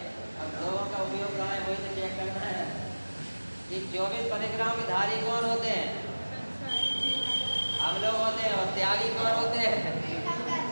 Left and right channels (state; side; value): inverted; both; correlation -1.00